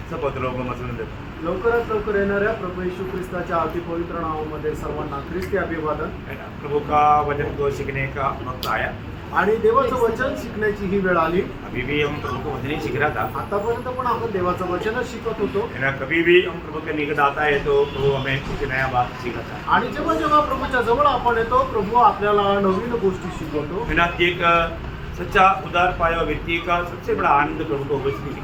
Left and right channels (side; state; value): both; identical; correlation 1.00